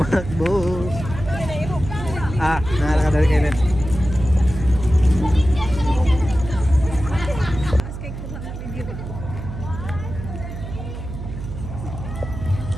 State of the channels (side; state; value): right; noise; hum, 8 dB below the sound